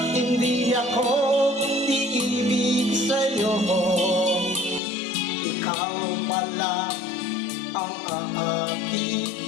hindi ako iibig sa'yo, ikaw pala ang aakit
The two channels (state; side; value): drops out; right; at 4.8 s